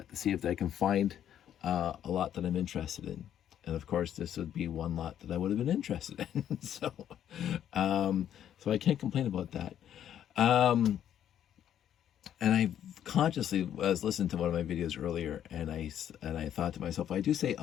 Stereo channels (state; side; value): quieter; right; 10.3 dB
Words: to see if I can find a lot that I'm interested in. And of course, this would be one lot that I would have been interested in. So I can't complain about that. And I consciously was listening to one of my videos earlier, and I thought to myself, I do say